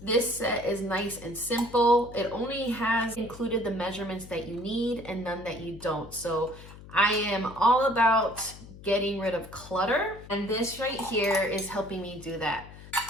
this set is nice and simple. It only has included the measurements that you need and none that you don't. So I am all about getting rid of clutter, and this right here is helping me do that.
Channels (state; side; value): noise; left; hum, 17 dB below the sound